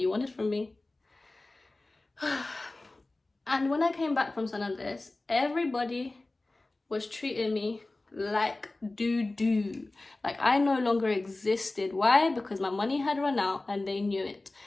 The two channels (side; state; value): right; quieter; 3.0 dB